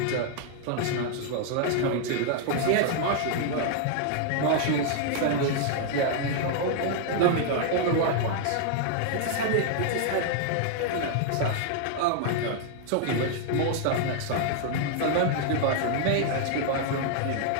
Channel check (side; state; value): both; different; correlation 0.00